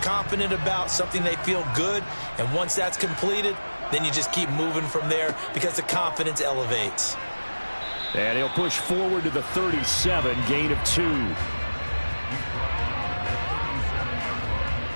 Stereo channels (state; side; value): inverted; both; correlation -1.00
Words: about, something they feel good. And once that's completed, then you just keep moving from there because the confidence elevates. And he'll push forward to the 37, gain of 2.